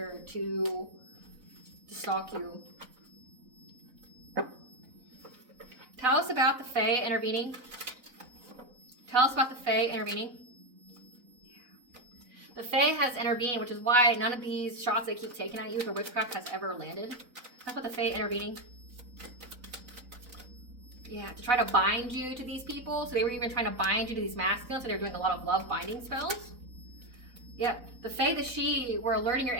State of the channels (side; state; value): left; late; 4.0 ms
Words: to stalk you. Tell us about the Fae intervening. Tell us about the Fae intervening. The Fae has intervened, which is why none of these shots they keep taking at you with their witchcraft has ever landed. That's what the Fae intervening. Yeah, to try to bind you to these people. So they were even trying to bind you to these masculines, so they were doing a lot of love binding spells. Yep, the Fae, the she, were alerting your